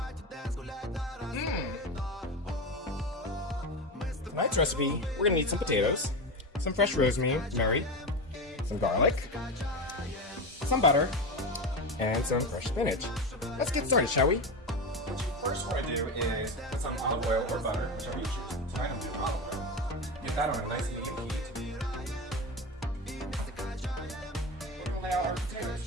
Tonight's recipe, we're going to need some potatoes, some fresh rosemary, some garlic, some butter, and some fresh spinach. Let's get started, shall we? What you first want to do is put some olive oil or butter, whichever you choose. Tonight I'm doing olive oil. Get that on a nice medium heat. We're going to lay out our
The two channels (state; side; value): normal; both; correlation 0.20